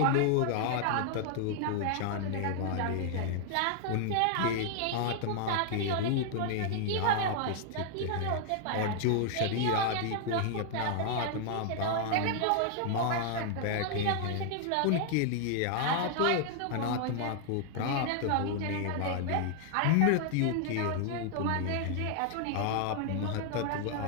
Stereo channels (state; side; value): different; both; correlation 0.00